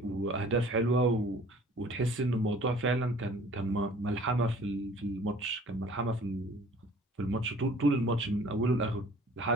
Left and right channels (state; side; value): normal; both; correlation 0.50